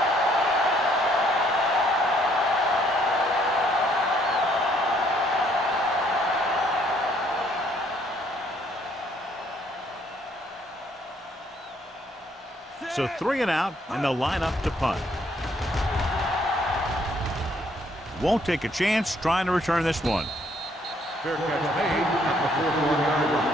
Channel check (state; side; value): normal; both; correlation 0.66